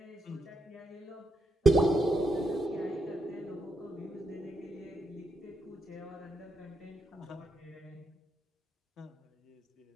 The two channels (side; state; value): both; normal; correlation 0.82